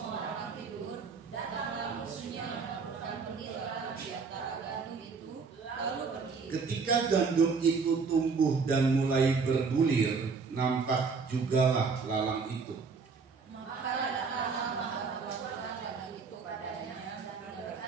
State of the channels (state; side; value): quieter; left; 4.9 dB